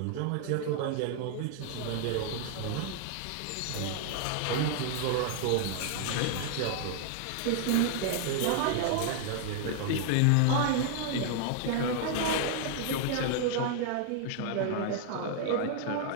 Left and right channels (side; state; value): both; different; correlation 0.00